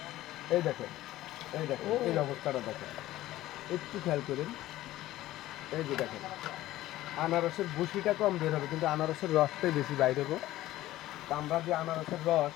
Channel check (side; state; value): right; quieter; 15.4 dB